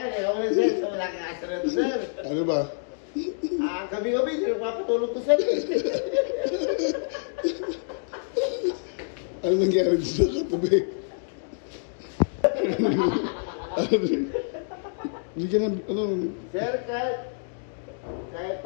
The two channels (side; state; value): right; silent; digital silence